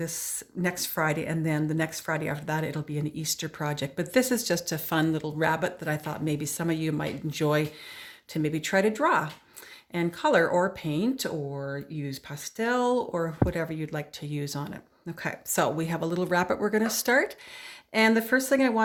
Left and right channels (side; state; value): both; identical; correlation 1.00